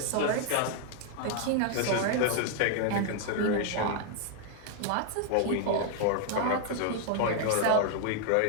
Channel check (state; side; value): different; both; correlation 0.00